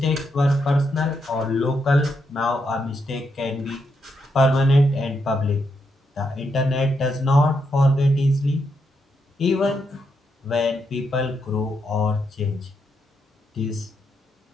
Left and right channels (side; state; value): both; normal; correlation 0.81